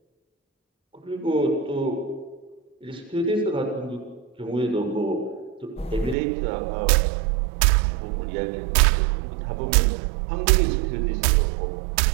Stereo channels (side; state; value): left; drops out; at 6.2 s